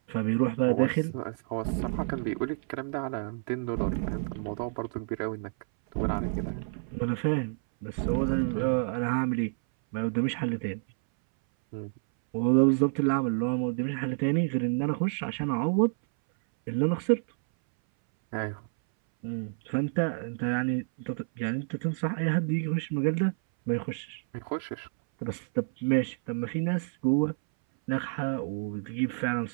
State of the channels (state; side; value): silent; left; 58 dB below the other